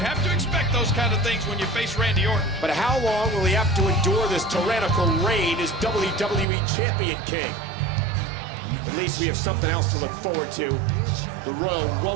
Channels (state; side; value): drops out; left; at 6.5 s